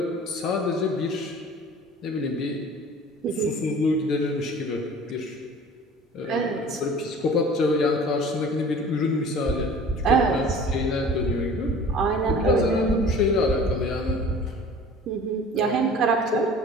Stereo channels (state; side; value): normal; both; correlation 0.45